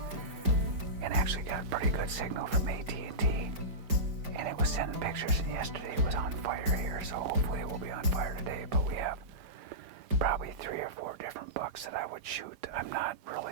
and actually got a pretty good signal from AT&T, and it was sending pictures, and yesterday it was on fire here, so hopefully it will be on fire today. But we have probably 3 or 4 different bucks that I would shoot. I'm not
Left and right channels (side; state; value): left; late; 5.0 ms